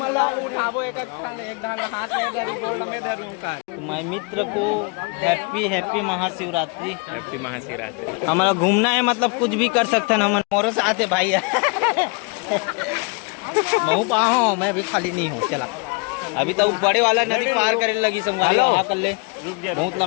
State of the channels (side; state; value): right; quieter; 32.3 dB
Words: मैं मित्र को हैप्पी महाशिवरात्रि हमारा घूमना है मतलब कुछ भी कर सकते हैं हम मोरो से आते भाई महू पाओ मैं भी खाली नहीं हूँ चला अभी तो बड़े वाला नदी पार करने लगी संगवारी कर ले बहुत